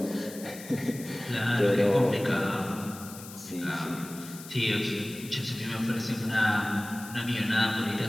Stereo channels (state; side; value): noise; left; hiss, 15 dB below the sound